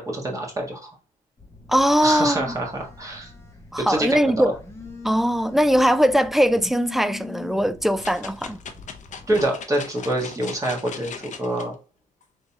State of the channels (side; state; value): both; normal; correlation 0.87